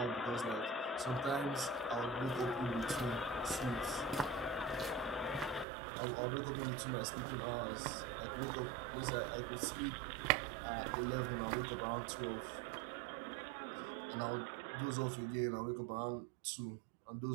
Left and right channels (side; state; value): left; drops out; at 5.7 s